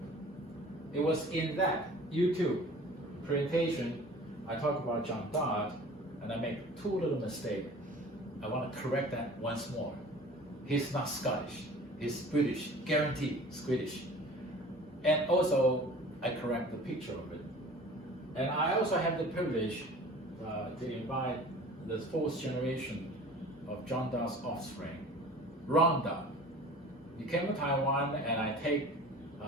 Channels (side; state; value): both; normal; correlation 0.44